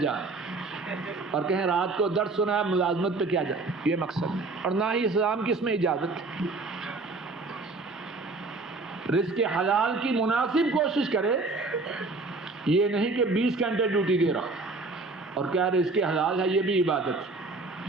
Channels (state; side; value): quieter; left; 3.5 dB